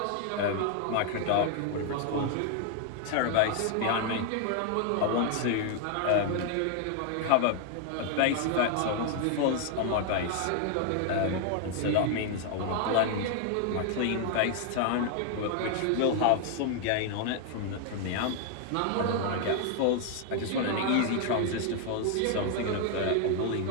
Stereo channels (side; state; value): both; different; correlation 0.00